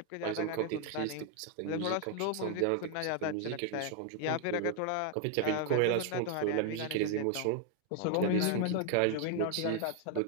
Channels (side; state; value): both; different; correlation 0.00